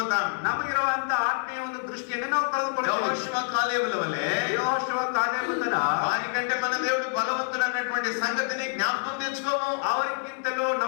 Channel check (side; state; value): right; silent; digital silence